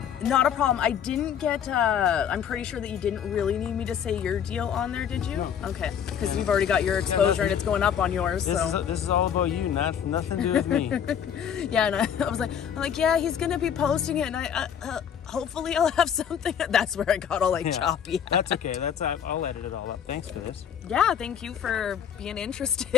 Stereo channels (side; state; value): right; quieter; 8.5 dB